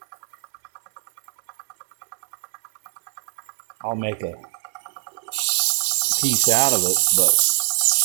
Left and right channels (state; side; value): silent; left; digital silence